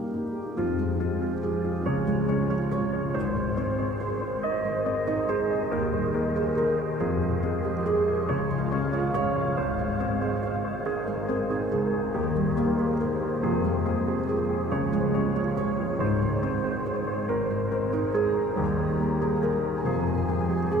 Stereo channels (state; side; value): normal; both; correlation 0.60